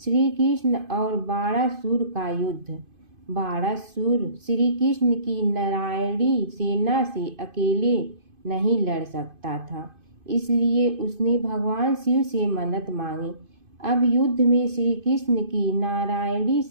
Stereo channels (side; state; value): left; late; 2.5 ms